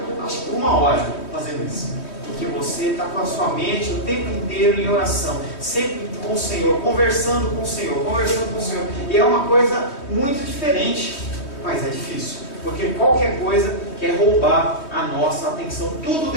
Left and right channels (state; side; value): late; right; 3.2 ms